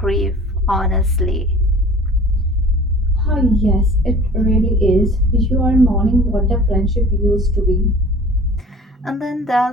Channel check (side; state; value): both; normal; correlation 0.45